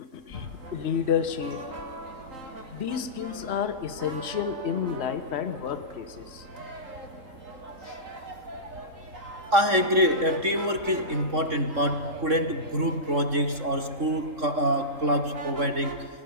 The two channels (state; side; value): late; left; 3.6 ms